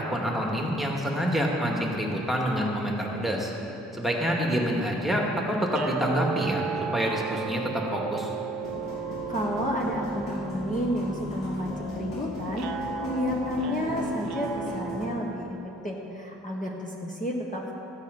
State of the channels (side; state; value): both; normal; correlation 0.61